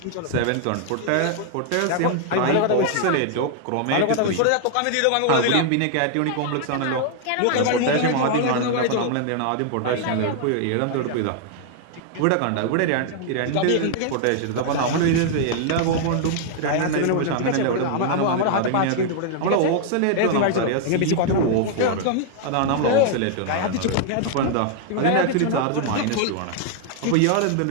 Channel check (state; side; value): different; both; correlation 0.00